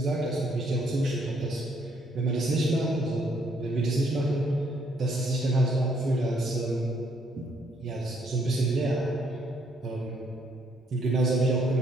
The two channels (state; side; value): normal; both; correlation 0.69